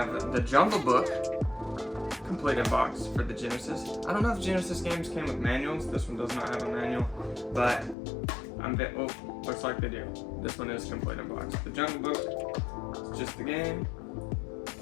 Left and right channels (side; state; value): right; drops out; at 8.0 s